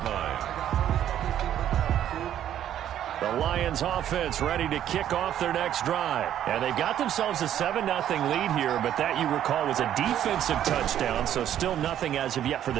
line. The Lions offense ready to kick off their next drive. And they've got themselves a 7-0 lead here, but that, you recall, was a defensive touchdown, so still nothing as of yet for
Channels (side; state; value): left; quieter; 10.9 dB